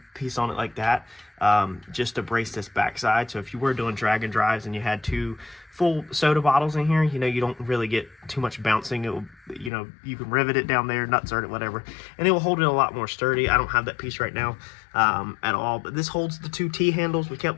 piece on it like that. just to brace this backside. So if you were doing drag and drives and you had 2 full soda bottles in here, you know, you don't really get too much bouncing. It will, you know, you can rivet it down there, nutsert it, whatever, and it will hold it a lot more sturdy. I don't have that piece right now at all, but this holds the 2 T handles. We kept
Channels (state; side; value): drops out; right; at 9.7 s